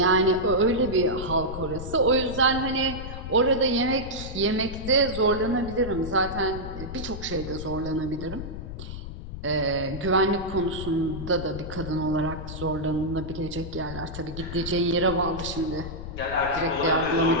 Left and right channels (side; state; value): left; noise; rumble, 9 dB below the sound